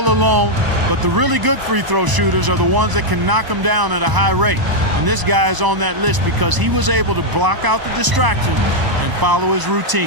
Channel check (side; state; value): left; late; 1.0 ms